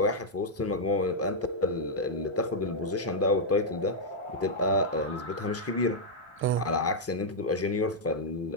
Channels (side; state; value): both; normal; correlation -0.05